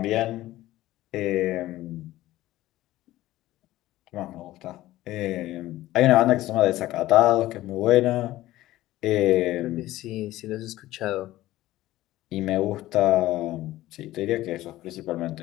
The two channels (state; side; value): quieter; right; 15.9 dB